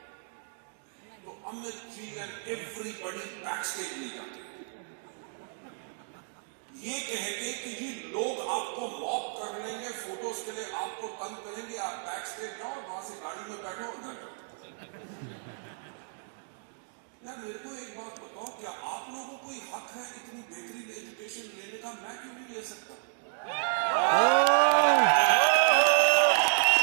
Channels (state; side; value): silent; left; digital silence